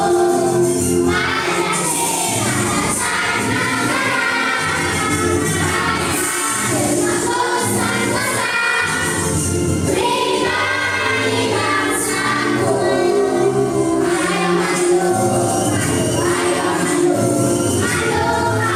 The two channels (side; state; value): both; identical; correlation 1.00